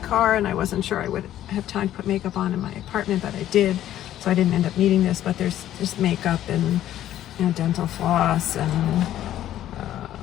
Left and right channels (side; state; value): right; quieter; 12.4 dB